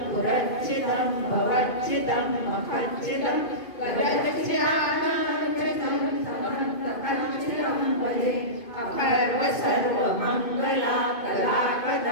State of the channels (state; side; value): late; right; 2.5 ms